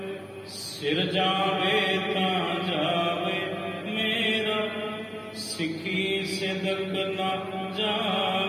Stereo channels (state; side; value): identical; both; correlation 1.00